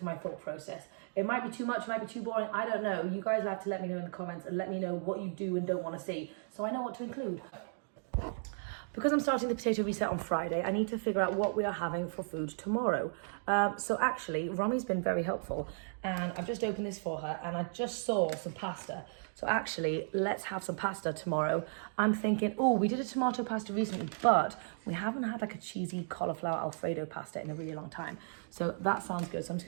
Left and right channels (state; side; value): silent; left; digital silence